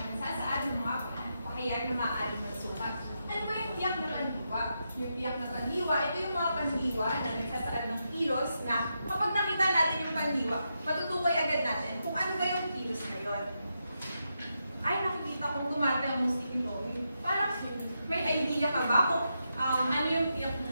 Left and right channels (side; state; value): both; inverted; correlation -0.85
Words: nagsasaad ng mga pakayag na maaaring magsukat. Ano ba yung tiyak na pandiwa? Yung tiyak na pandiwa, ito yung mga pandiwa na nagsasaad ng kilos na kapag nakita natin yung pandiwa, matutukoy agad natin kung ano ba yung kilos na yun. Ay, nakikita kong tumatayang musikulo. Parang may idea ka ba kung ano yung tiyak na